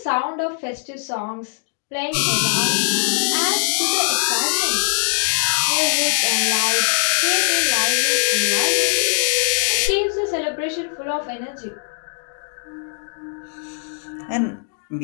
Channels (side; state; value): right; silent; digital silence